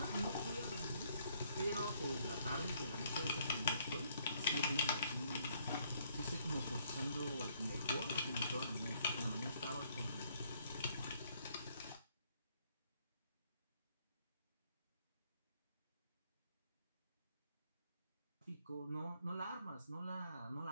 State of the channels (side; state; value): both; inverted; correlation -0.68